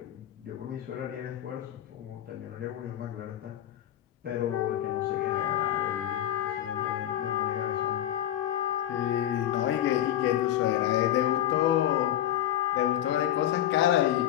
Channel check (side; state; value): right; quieter; 12.1 dB